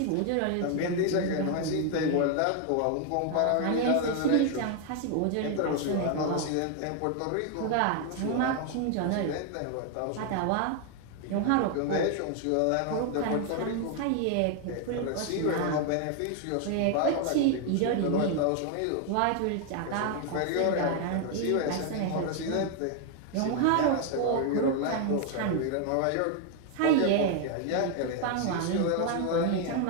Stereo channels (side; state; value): both; different; correlation 0.01